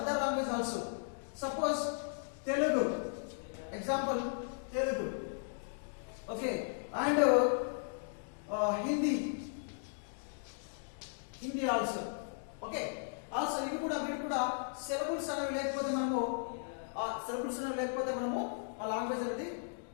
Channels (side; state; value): right; silent; digital silence